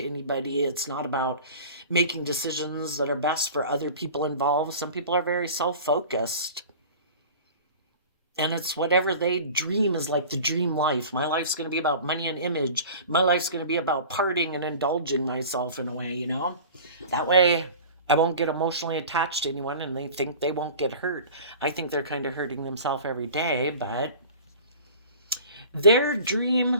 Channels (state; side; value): inverted; both; correlation -0.40